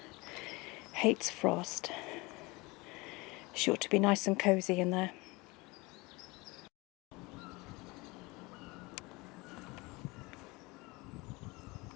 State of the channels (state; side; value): quieter; right; 24.4 dB